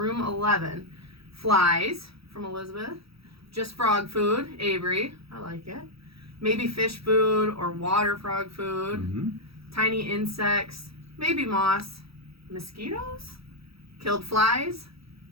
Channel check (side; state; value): left; late; 0.76 ms